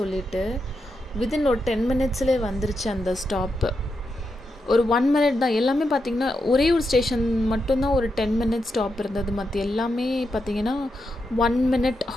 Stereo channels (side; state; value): both; normal; correlation 0.85